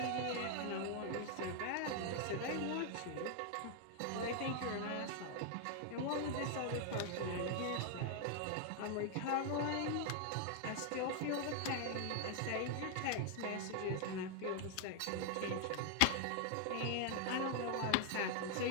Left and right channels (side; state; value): both; different; correlation 0.00